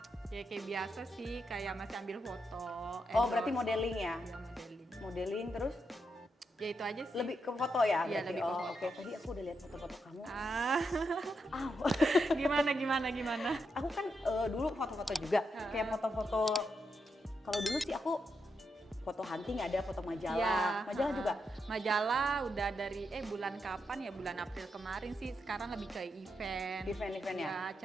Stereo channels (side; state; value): both; normal; correlation 0.83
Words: Ya kayak biasa sih, kayak masih ambil foto. Oh berarti modeling ya? Ya modeling. Modeling terus Ya itu aja sih. lebih ke foto ya? Iya, berarti? lebih ke Oh, foto. Oke, tadi aku udah lihat foto-foto kamu. Ah, Aw. gimana? Aku kan dulu foto-foto juga, kayak foto-foto. Kalau dulu sih aku foto hunting ada, foto majalah. Ya, Majalah juga. Majalah udah dari bulan kapan ya, bulan April kemarin sih. Sekarang lebih ke event. Event-event ya? Ya,